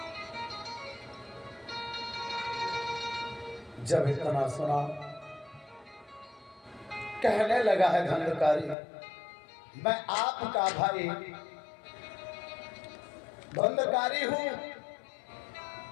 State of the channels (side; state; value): right; drops out; at 8.8 s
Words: जब इतना सुना कहने लगा है धुंधकारी, मैं आपका भाई धुंधकारी हूं